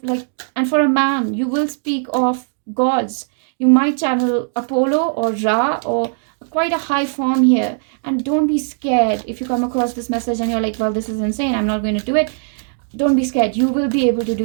and for a man, you will speak of gods. You might channel Apollo or Ra or quite a high form here. And don't be scared if you come across this message and you're like, well, this is insane, I'm not going to do it. Don't be scared. You will be able to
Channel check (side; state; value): left; silent; 66 dB below the other